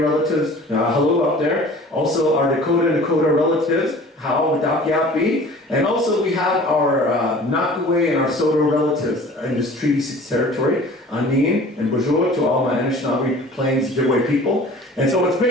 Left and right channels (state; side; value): normal; both; correlation 0.45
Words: hello out there. Also our Dakota relatives, How, Dakiapi. And also we have our Nakaway and our Soto relatives in this Treaty 6 territory, Anin and Bonjour to all my Anishinaabe Plains Ojibwe people. And so it's